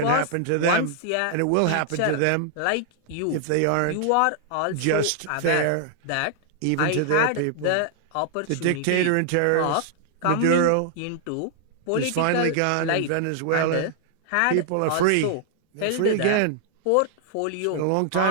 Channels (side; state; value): both; different; correlation 0.00